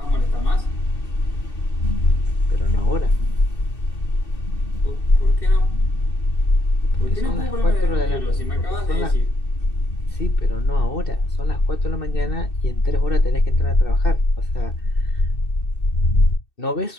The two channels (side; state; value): right; late; 2.6 ms